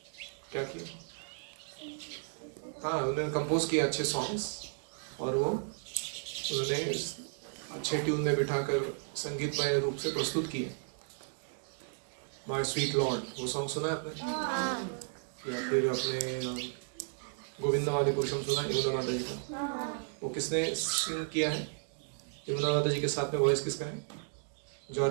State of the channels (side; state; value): left; silent; digital silence